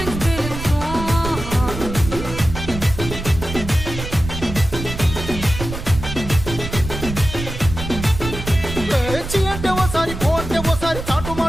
చి అంటే ఓసారి పో అంటే ఓసారి చాటు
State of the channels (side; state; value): right; noise; rumble, 8 dB below the sound